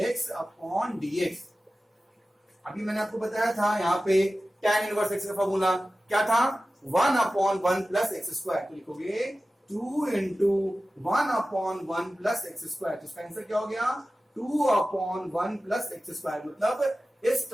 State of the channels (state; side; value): normal; both; correlation 0.95